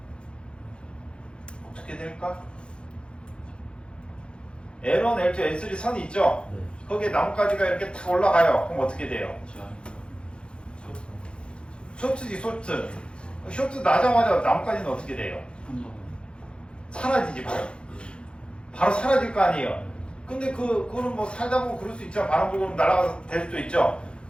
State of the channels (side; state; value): right; late; 0.055 ms